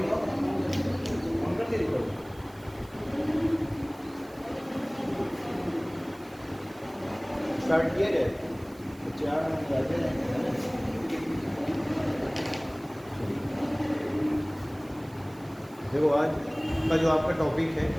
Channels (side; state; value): right; noise; hiss, 26 dB below the sound